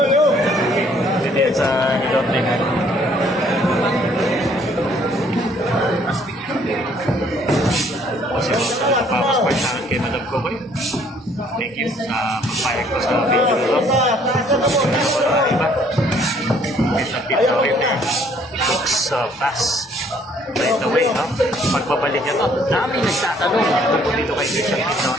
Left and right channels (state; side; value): normal; both; correlation 0.62